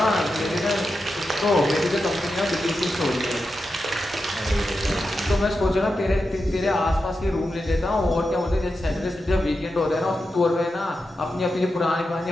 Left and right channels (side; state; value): both; normal; correlation 0.89